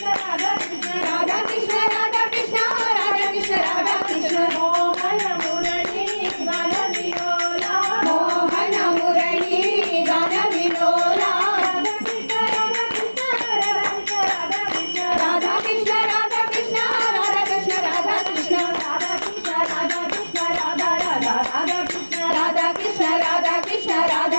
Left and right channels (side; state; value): both; inverted; correlation -1.00